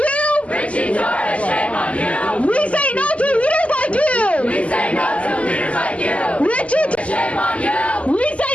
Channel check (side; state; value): right; late; 0.063 ms